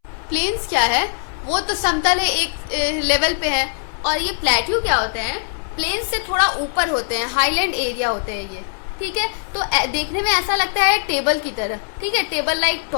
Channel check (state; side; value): silent; right; 65 dB below the other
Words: प्लेन्स क्या है? वो तो समतल है, एक लेवल पे है। और ये प्लेट्यू क्या होते हैं? प्लेन्स से थोड़ा ऊपर होते हैं, हाईलैंड एरिया होते हैं ये। ठीक है, तो देखने में ऐसा लगता है टेबल की तरह। ठीक है, table like